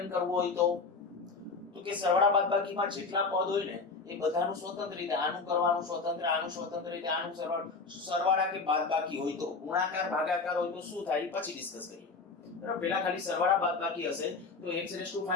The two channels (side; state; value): right; quieter; 4.3 dB